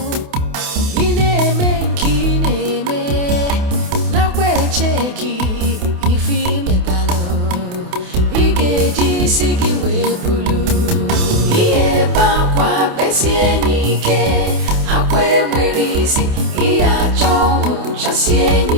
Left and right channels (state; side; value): late; left; 28 ms